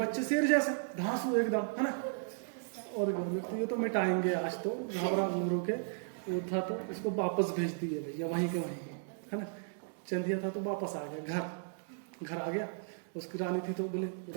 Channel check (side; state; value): left; silent; digital silence